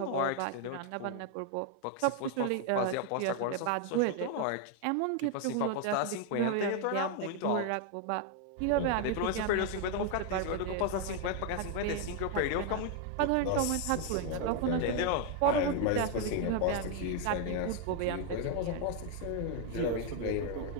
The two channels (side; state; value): both; different; correlation 0.00